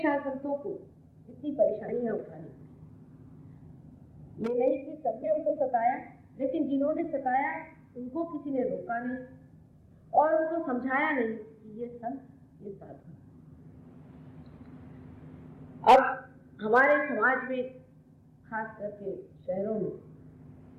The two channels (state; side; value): identical; both; correlation 1.00